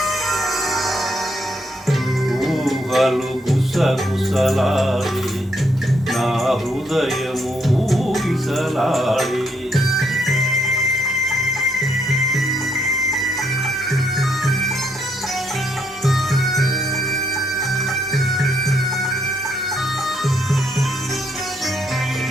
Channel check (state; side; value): normal; both; correlation 0.73